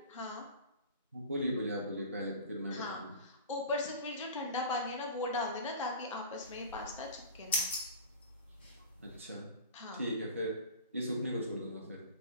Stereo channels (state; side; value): inverted; both; correlation -0.37